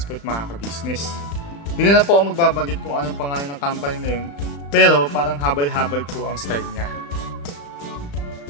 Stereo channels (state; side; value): late; right; 35 ms